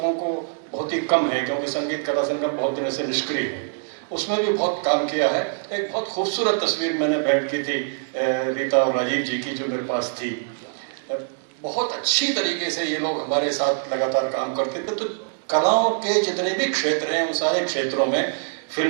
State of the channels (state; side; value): silent; left; digital silence